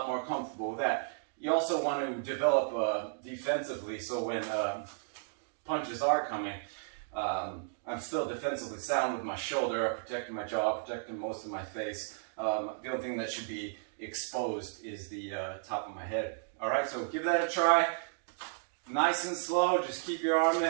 more comfortable with that. You also want to develop defensively, so when punches are coming, I'm still defensively sound with my shoulder, protecting my jaw, protecting most of my face. The only thing that should be exposed is the top of my head. All right, so give that a try. Nice and slow, just keep your arm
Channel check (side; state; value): left; silent; digital silence